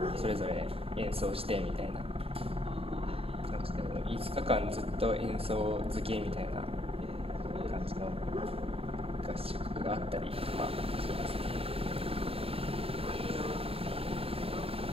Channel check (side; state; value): left; late; 0.28 ms